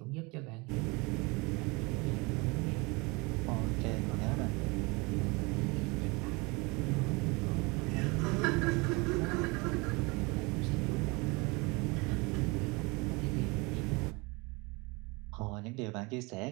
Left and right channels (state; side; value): quieter; left; 26.8 dB